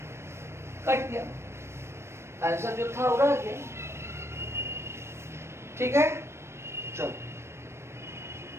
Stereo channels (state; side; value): late; left; 0.13 ms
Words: कट गया, आंसर जो था वो रह गया। ठीक है, चलो